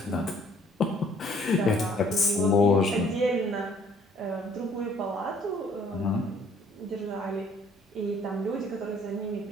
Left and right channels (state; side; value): normal; both; correlation 0.60